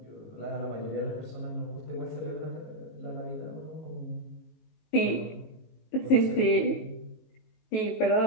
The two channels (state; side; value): late; right; 18 ms